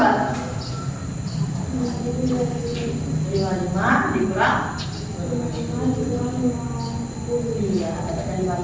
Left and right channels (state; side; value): identical; both; correlation 1.00